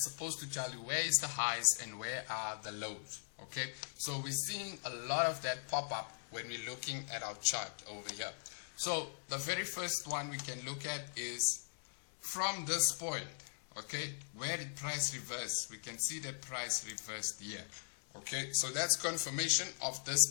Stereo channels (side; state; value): right; silent; digital silence